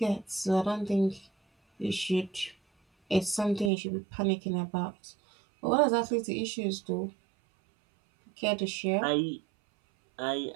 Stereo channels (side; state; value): left; drops out; at 3.7 s